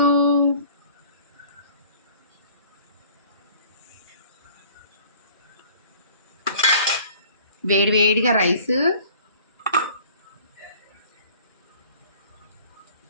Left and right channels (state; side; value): inverted; both; correlation -0.50